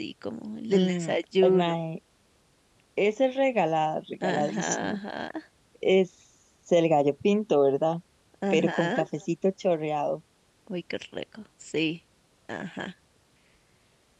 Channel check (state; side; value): identical; both; correlation 1.00